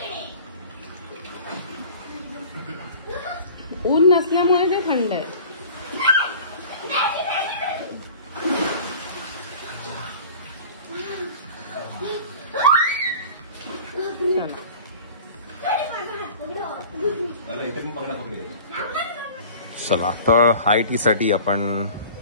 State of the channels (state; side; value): inverted; both; correlation -0.43